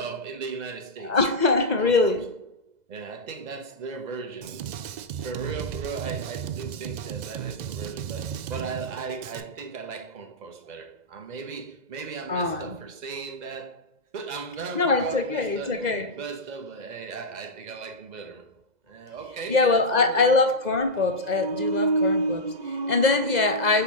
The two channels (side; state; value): left; late; 2.0 ms